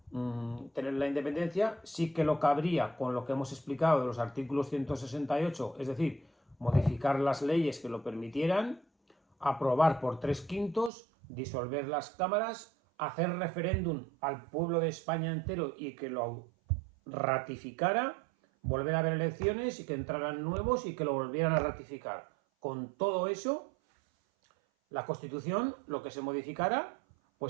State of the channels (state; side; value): drops out; left; at 10.9 s